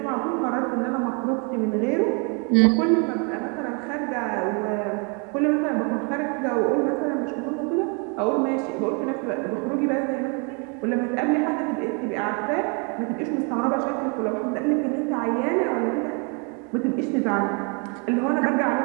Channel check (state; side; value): quieter; left; 35.4 dB